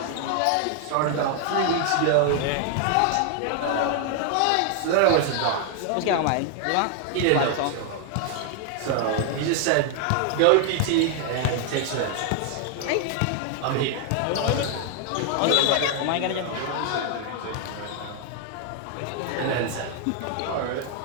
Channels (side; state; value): both; different; correlation 0.00